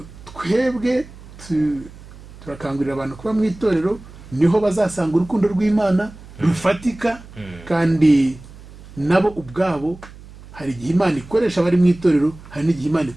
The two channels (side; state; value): right; noise; hum, 19 dB below the sound